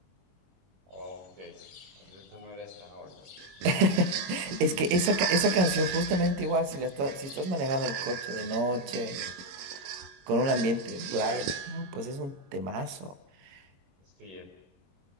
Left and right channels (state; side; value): late; left; 22 ms